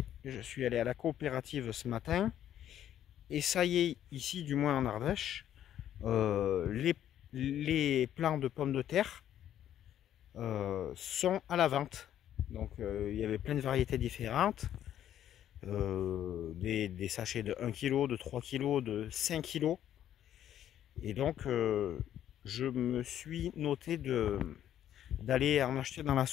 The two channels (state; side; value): quieter; right; 11.0 dB